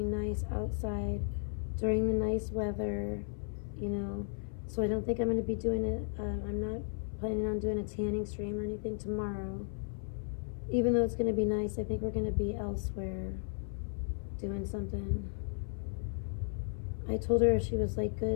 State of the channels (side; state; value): right; silent; 55 dB below the other